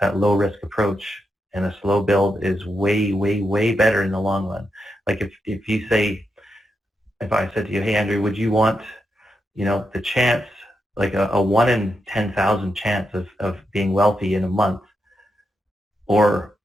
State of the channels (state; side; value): normal; both; correlation 0.85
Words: that low risk approach and a slow build is way, way, way better in the long run. Like if you say, if I said to you, hey, Andrew, would you want, you know, the chance, like a 1 in 10,000 chance of being wealthy in a month, or